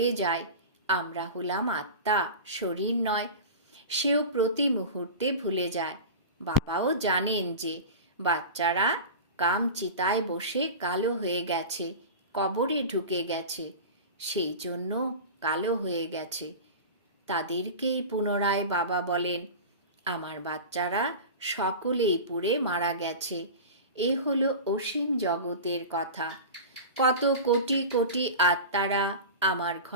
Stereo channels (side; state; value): both; inverted; correlation -0.30